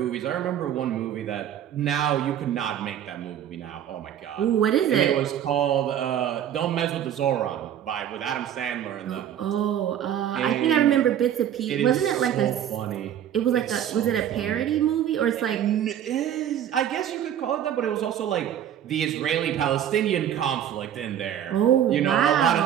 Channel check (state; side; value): quieter; left; 10.2 dB